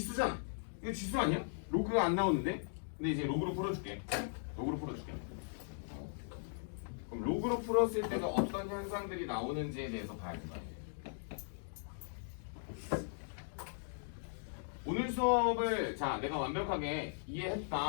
이거 지수 아니야? 로그가 안 나오는데? 근데 이제 로그로 풀어줄게. 로그로 풀어줄게. 그럼 로그로 풀었을 때가 어떤 현상들이 나오는지에 대해서 봐야 된다. 오늘 수업을 자 내가 완벽하게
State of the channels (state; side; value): silent; right; digital silence